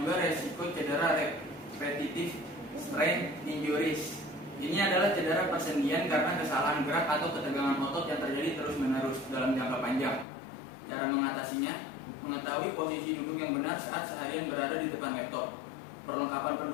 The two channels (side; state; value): right; drops out; at 10.2 s